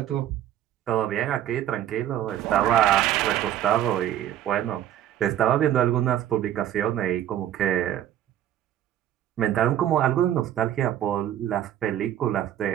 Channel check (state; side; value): quieter; left; 11.6 dB